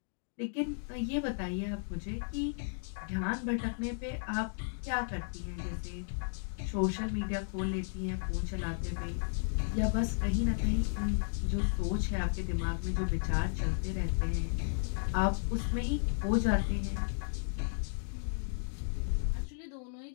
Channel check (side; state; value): right; silent; digital silence